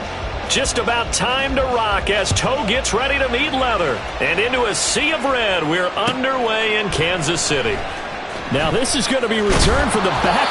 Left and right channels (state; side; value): identical; both; correlation 1.00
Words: Just about time to rock as toe gets ready to meet leather. And into a sea of red, we're underway in Kansas City. Now this is going to be returned from the